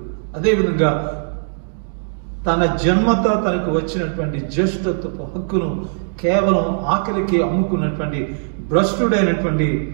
అదేవిధంగా తన జన్మత తనకు వచ్చినటువంటి జ్యేష్ఠత్వపు హక్కును కేవలం ఆకలికి అమ్ముకున్నటువంటి భ్రష్టుడైనటువంటి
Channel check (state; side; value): silent; left; digital silence